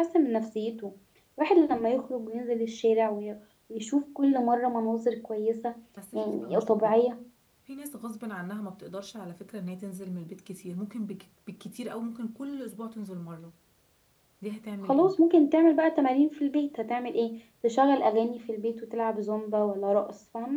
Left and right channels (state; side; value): identical; both; correlation 1.00